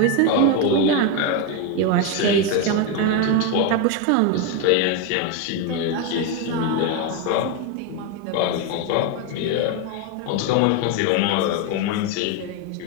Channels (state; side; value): different; both; correlation 0.02